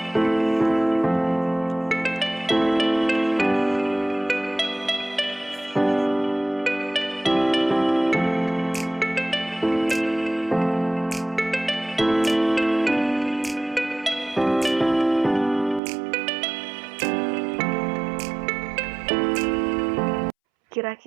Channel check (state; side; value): drops out; left; at 15.8 s